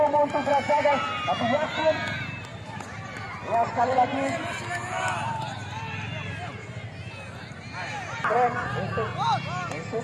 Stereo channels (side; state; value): both; identical; correlation 1.00